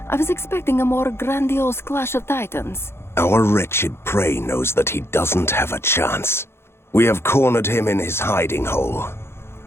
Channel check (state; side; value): late; right; 0.12 ms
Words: I was expecting a more grandiose clash of titans. Our wretched prey knows that he doesn't have a chance. We have cornered him in his hiding hole.